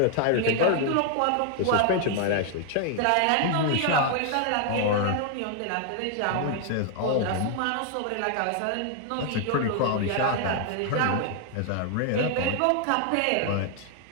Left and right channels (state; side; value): different; both; correlation 0.00